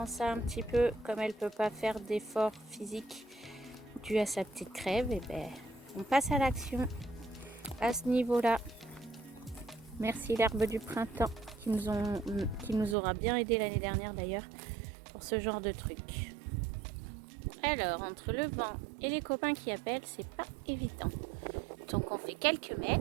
ça un petit peu, comme elle peut pas faire d'effort physique dû à sa petite crève, et ben on passe à l'action à ce niveau-là. Merci l'herbe du printemps qui nous aura bien aidé l'année dernière d'ailleurs pour ce genre de truc. Alors, entre le vent et les copains qui appellent, c'est pas évident. Donc on fait quelques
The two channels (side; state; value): left; drops out; at 13.0 s